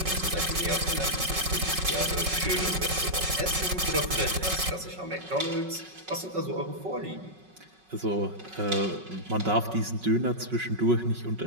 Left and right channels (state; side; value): late; left; 5.4 ms